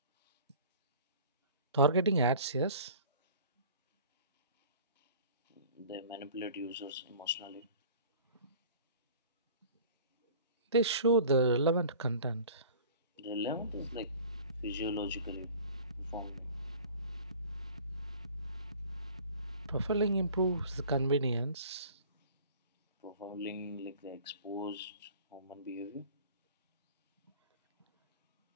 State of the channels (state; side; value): inverted; both; correlation -0.46